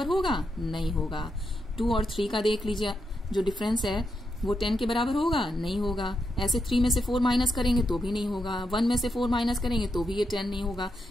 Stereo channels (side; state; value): both; normal; correlation 0.83